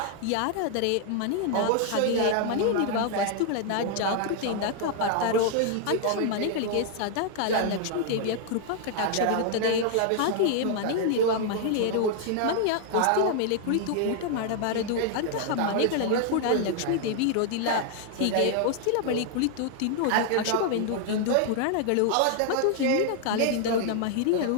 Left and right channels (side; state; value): both; different; correlation 0.00